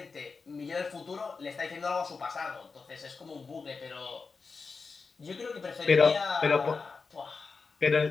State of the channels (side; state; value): right; quieter; 4.7 dB